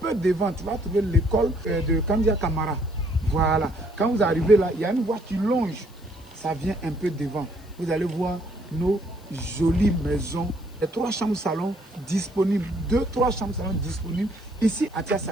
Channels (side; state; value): left; noise; hiss, 28 dB below the sound